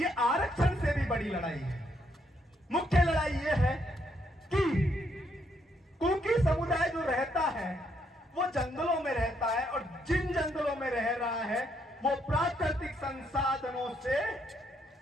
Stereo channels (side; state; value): both; normal; correlation 0.74